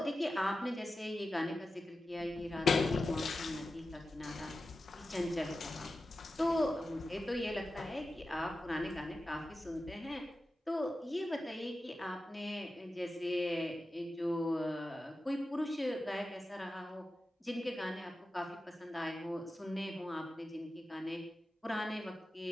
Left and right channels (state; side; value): normal; both; correlation 0.93